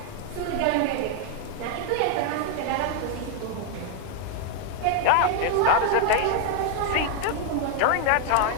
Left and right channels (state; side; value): different; both; correlation 0.00